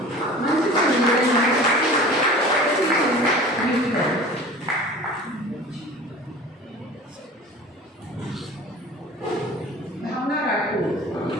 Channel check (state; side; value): normal; both; correlation 0.40